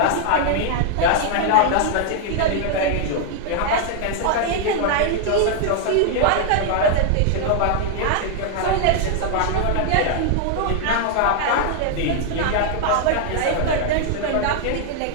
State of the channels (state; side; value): different; both; correlation 0.00